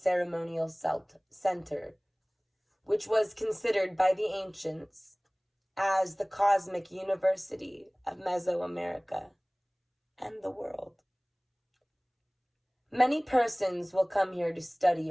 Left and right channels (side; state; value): both; identical; correlation 1.00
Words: center, which was considered by the ancients as the cosmic university of Mesoamerica and the world. Many persons will come here to study